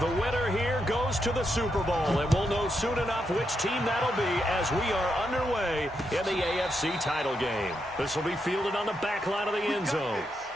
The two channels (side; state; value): both; normal; correlation 0.82